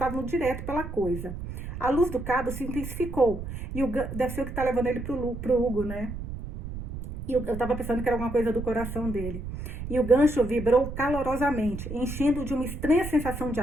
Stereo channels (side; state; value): right; noise; rumble, 8 dB below the sound